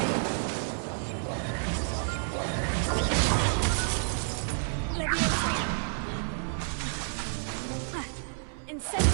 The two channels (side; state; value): left; silent; 58 dB below the other